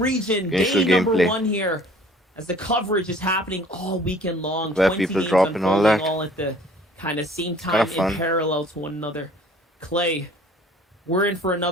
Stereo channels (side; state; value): both; normal; correlation 0.52